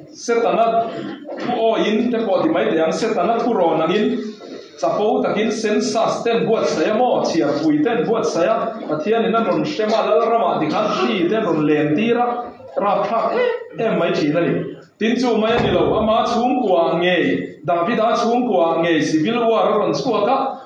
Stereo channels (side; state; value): both; identical; correlation 1.00